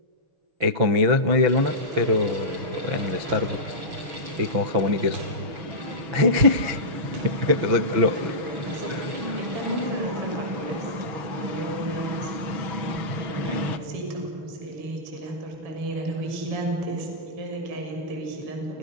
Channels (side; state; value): left; late; 6.0 ms